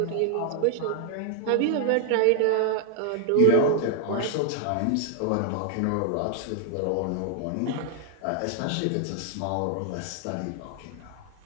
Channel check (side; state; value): both; different; correlation 0.00